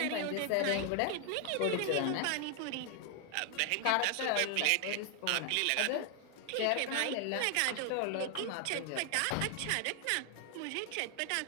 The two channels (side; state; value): both; different; correlation 0.00